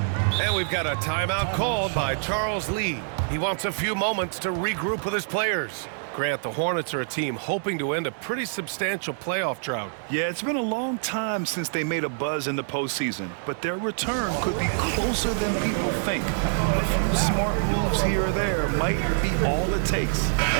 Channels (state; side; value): silent; left; digital silence